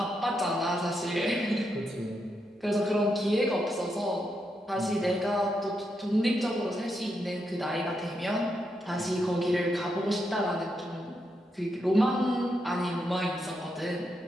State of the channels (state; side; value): normal; both; correlation 0.82